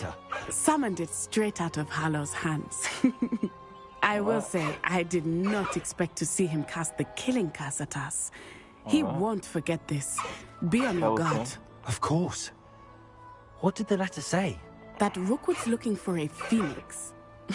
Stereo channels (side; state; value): both; identical; correlation 1.00